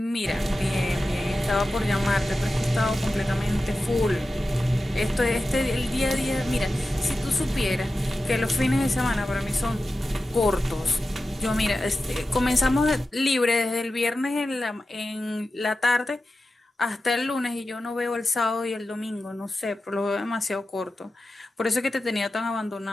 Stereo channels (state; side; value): normal; both; correlation 0.93